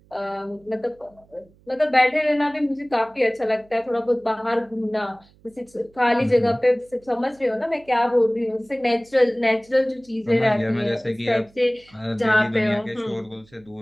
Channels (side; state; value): right; noise; hum, 30 dB below the sound